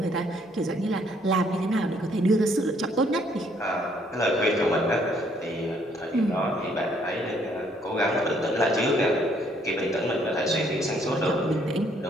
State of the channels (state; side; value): normal; both; correlation 0.66